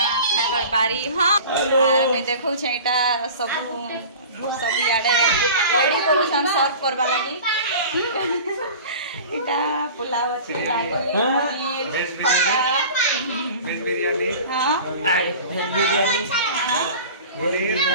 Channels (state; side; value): inverted; both; correlation -0.39